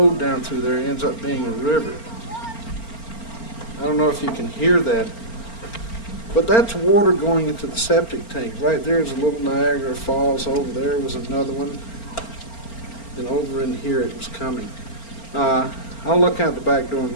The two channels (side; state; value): right; late; 4.4 ms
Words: down through there ends up being a river. I don't know if you can hear that. But that's water going into the septic tank. Right there is a little Niagara Falls. Over there was another one. And over in here it was coming. I'll look out the back door in